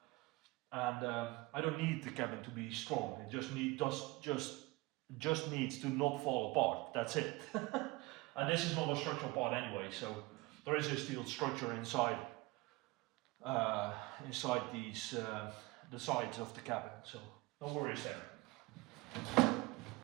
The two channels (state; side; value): quieter; left; 22.7 dB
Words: and I don't need the cabin to be strong. It just needs to not fall apart. That's it. And this is not a structural part anyway, so there is a steel structure inside these the sides of the cabin, so no worries there.